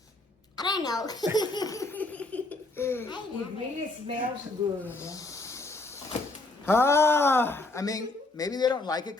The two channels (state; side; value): quieter; right; 3.0 dB